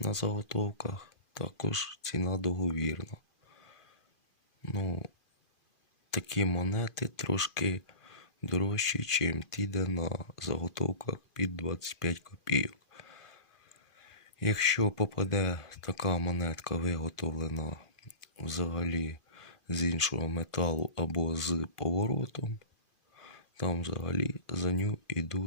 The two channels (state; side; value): late; right; 2.4 ms